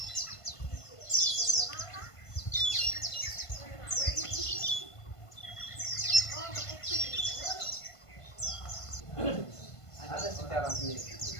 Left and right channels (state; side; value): late; right; 1.5 ms